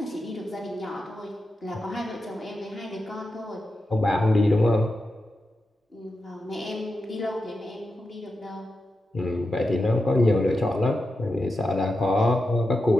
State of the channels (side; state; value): both; normal; correlation 0.89